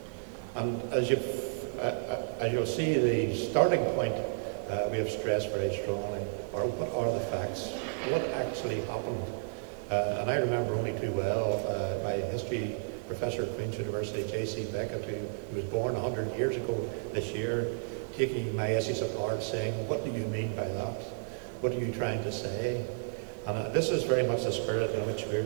And as you'll see, the starting point we have stressed very strongly are what are the facts, what actually happened. And I remember only too well my history professor at Queen's University, J.C. Beckett, who was born 100 years ago this year, taking my essays apart saying, what do you mean by that? What are you trying to say? And this is very much the spirit in which we're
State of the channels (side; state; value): left; silent; 56 dB below the other